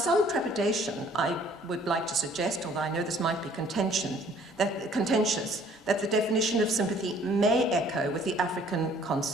trepidation, I would like to suggest, although I know this might be contentious, that the definition of sympathy may echo with the African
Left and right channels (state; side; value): normal; both; correlation 0.57